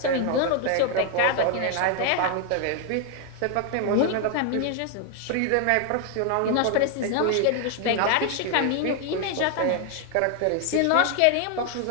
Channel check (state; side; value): different; both; correlation 0.00